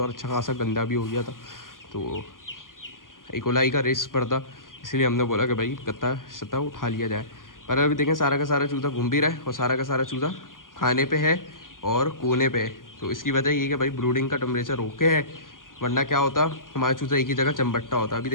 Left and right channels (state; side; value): late; right; 0.90 ms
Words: और अच्छा खासा गंदा भी हो गया था, तो इकोलाई का रिस्क पड़ता, इसलिए हमने बोला कि भाई गत्ता सत्ता उठा लिया जाए। पर अभी देखें सारा का सारा चूज़ा घूम भी रहा है और सारा का सारा चूज़ा खाने पे है और कोने पे है। तो इसकी वजह ये कि भाई ब्रूडिंग का टेम्परेचर ओके है, वरना क्या होता हमारा चूज़ा एक ही जगह चमबट्टा होता। अभी